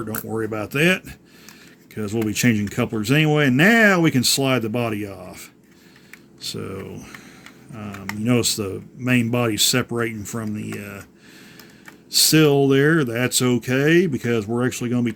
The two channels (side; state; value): both; identical; correlation 1.00